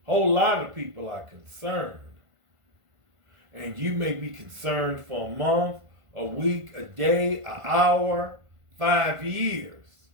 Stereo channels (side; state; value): left; late; 1.5 ms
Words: A whole lot of people are concerned. And you may be concerned for a month, a week, a day, an hour, 5 years.